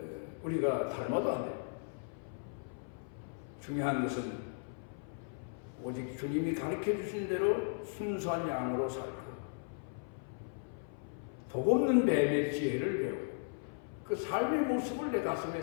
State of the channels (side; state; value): right; silent; 53 dB below the other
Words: 우리가 닮아도 안 돼요. 중요한 것은 오직 주님이 가르쳐 주신 대로 순수한 양으로 살고 독없는 뱀의 지혜를 배우고 그 삶의 모습을 내 가슴에